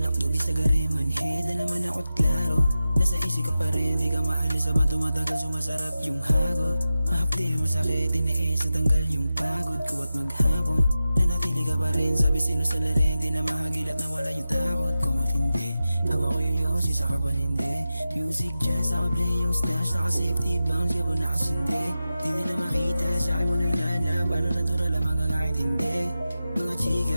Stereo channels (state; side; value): inverted; both; correlation -0.93